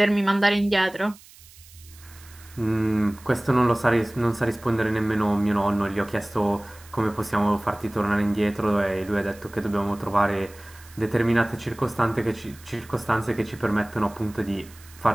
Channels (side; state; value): right; noise; hiss, 23 dB below the sound